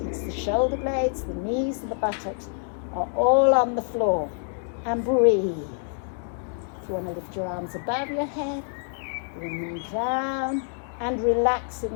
It's the shoulder blades, the knees and the buttocks are all on the floor. And breathe. If you want to lift your arms above your head, bring them down and relax in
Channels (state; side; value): silent; right; 61 dB below the other